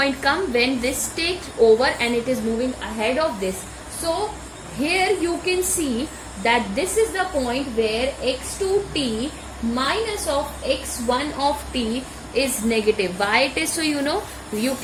come when this takes over and it is moving ahead of this. So here you can see that this is the point where x2t minus of x1 of t is negative. Why it is so? You know, you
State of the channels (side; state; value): both; identical; correlation 1.00